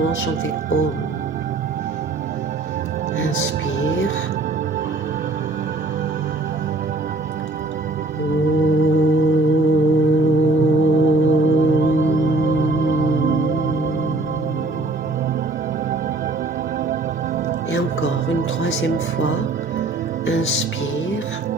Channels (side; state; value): left; quieter; 3.0 dB